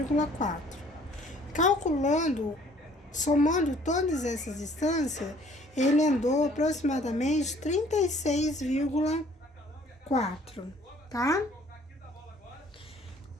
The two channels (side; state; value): both; normal; correlation 0.57